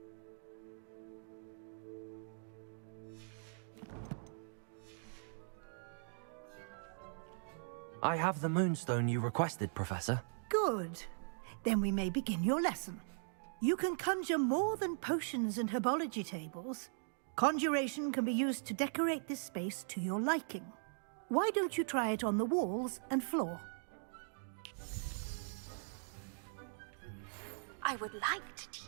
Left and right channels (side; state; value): left; silent; digital silence